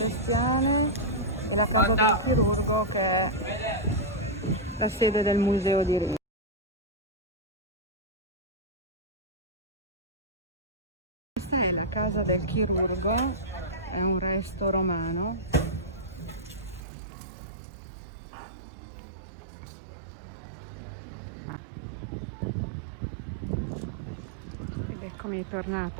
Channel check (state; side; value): drops out; left; at 16.8 s